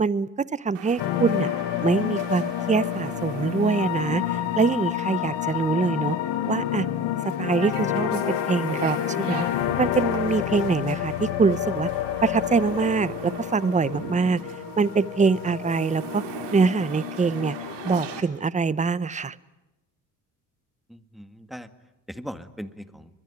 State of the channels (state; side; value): normal; both; correlation 0.45